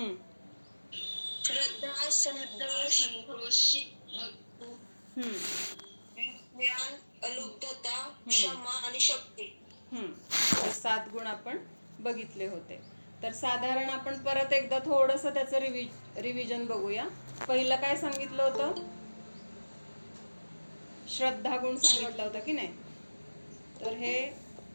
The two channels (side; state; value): both; inverted; correlation -1.00